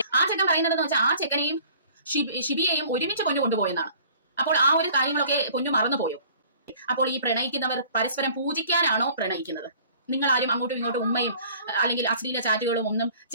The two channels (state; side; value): inverted; both; correlation -0.50